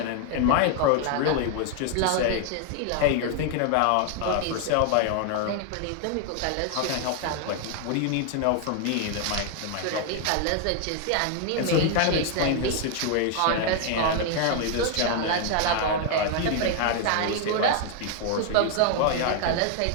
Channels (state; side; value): different; both; correlation 0.00